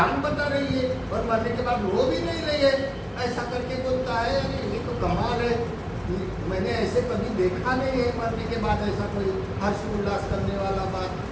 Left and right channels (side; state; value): both; identical; correlation 1.00